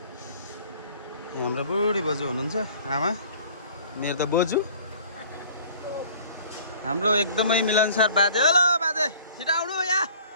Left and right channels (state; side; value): inverted; both; correlation -0.51